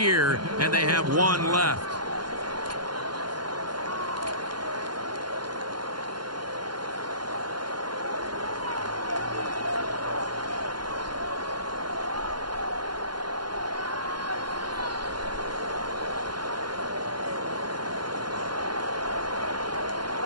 and they have one left.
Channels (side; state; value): left; late; 0.71 ms